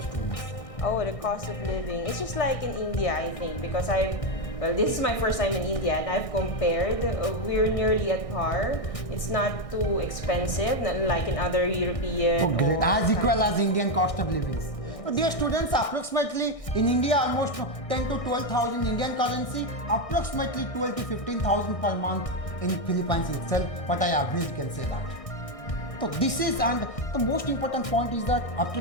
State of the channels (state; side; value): late; right; 1.6 ms